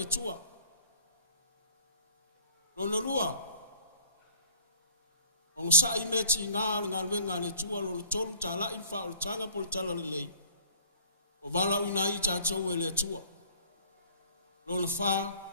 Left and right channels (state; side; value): inverted; both; correlation -0.53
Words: tua. Lona lua. O sa I meti ngā luenga le tua lona tolu tā la in wha o tanga po le tala le lei. O wala uina I tātou e le tua. Lona wha.